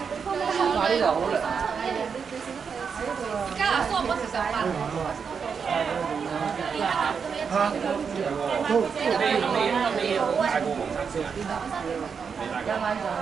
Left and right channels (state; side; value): quieter; left; 6.2 dB